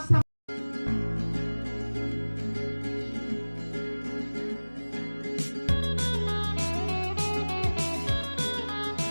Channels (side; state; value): both; inverted; correlation -1.00